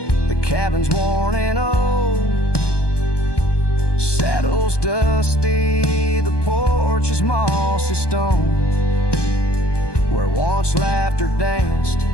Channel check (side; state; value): right; late; 1.2 ms